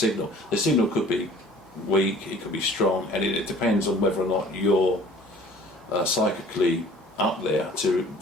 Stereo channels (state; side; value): normal; both; correlation 0.50